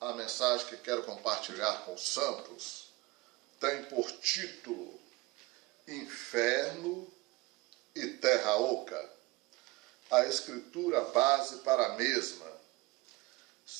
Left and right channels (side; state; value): left; quieter; 21.5 dB